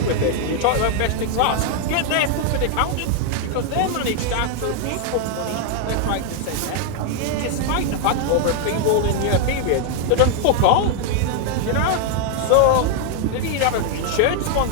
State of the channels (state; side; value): different; both; correlation 0.00